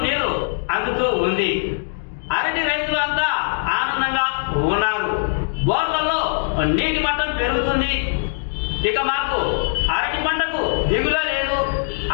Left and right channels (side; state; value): right; silent; digital silence